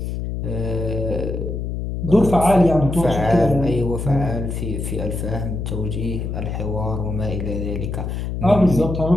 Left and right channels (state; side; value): noise; left; hum, 4 dB below the sound